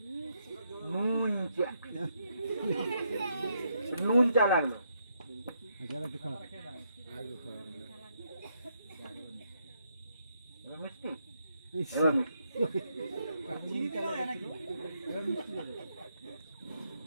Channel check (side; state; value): both; inverted; correlation -0.77